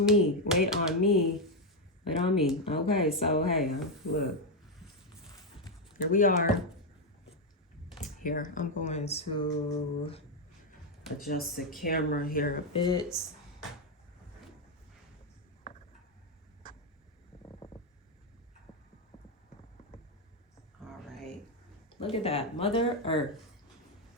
me, wait on me, wait on me. Okay, so hey, look, here we are. Here, I'm going to adjust the camera here a bit. All right, look at that, Mother Earth,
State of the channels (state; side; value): normal; both; correlation 0.04